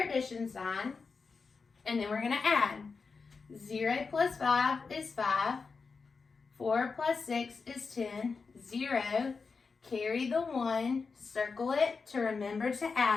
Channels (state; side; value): quieter; right; 4.8 dB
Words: sign, and then we're going to add. 0 plus 5 is 5. 4 plus 6 is 10. 0. Carry the 1. Circle it to remember to